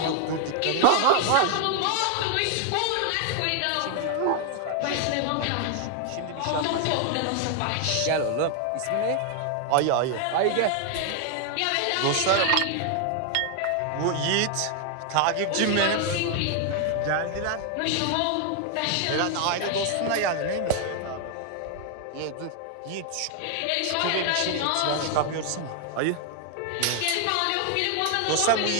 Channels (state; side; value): different; both; correlation 0.00